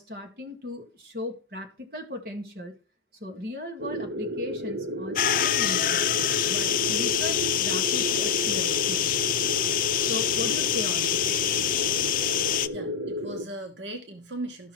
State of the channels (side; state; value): right; quieter; 6.6 dB